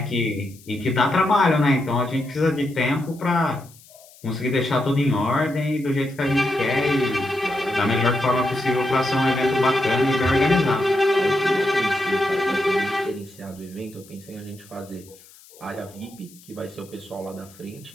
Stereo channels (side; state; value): left; noise; hiss, 24 dB below the sound